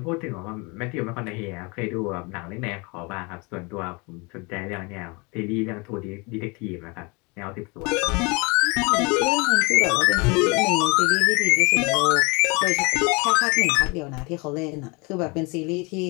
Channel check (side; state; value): right; quieter; 28.5 dB